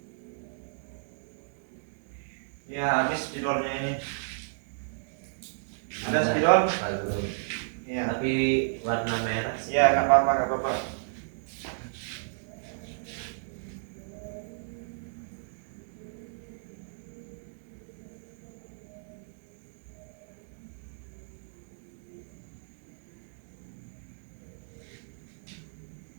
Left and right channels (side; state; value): left; silent; digital silence